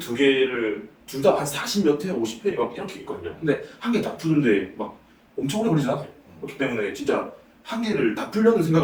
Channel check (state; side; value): identical; both; correlation 1.00